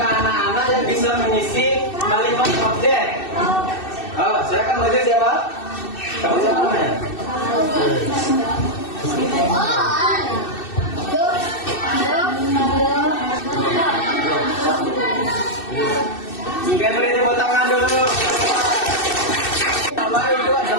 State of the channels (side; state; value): right; late; 2.6 ms